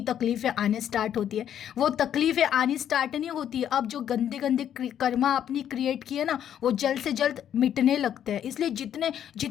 तकलीफ़ें आने स्टार्ट होती है। वो तकलीफ़ें आनी स्टार्ट नहीं होती, अब जो गंदे गंदे कर्मा आपने क्रिएट किए ना, वो जल्द से जल्द मिटने लगते हैं। इसलिए जितने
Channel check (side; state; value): right; quieter; 9.9 dB